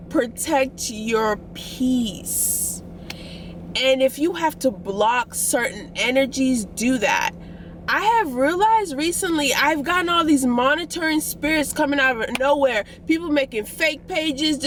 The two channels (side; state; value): both; identical; correlation 1.00